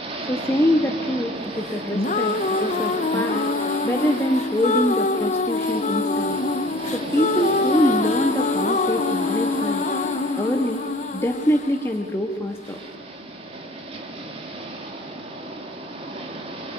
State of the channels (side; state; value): both; normal; correlation 0.51